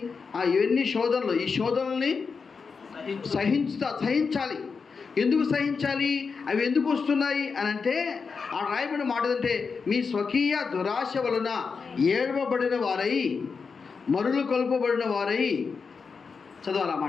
ఇవన్నీ శోధనలు, ఈ శోధనల్ని సహించాలి. ఎందుకు సహించాలి? అవి ఎందుకు వస్తున్నాయి అని అంటే, ఆ రాయబడిన మాట అంటే, మీ స్వకీయ దురాశ వలన ఏడవబడిన వారై, మరులు కొల్పబడిన వారై.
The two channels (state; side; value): quieter; right; 5.2 dB